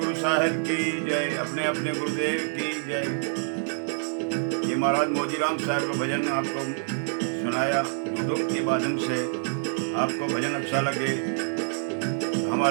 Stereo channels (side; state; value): left; silent; 60 dB below the other